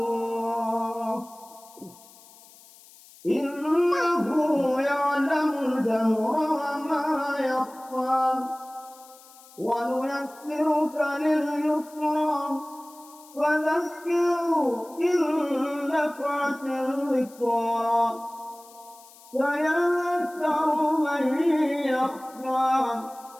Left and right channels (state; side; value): noise; left; hiss, 23 dB below the sound